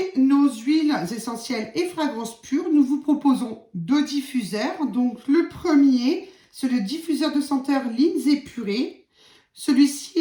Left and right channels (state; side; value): identical; both; correlation 1.00